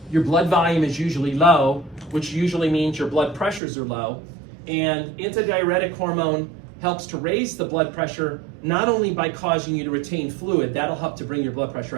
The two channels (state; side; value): drops out; left; at 3.6 s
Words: your blood volume is usually low, which usually means your blood pressures are low, and antidiuretic hormone helps to raise the blood pressure not only by causing you to retain fluid, that'll help to bring your blood pressure